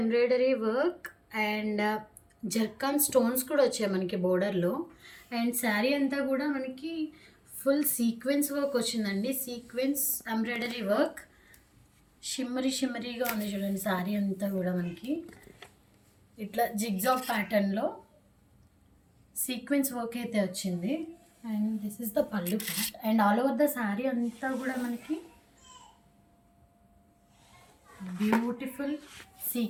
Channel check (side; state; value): both; identical; correlation 1.00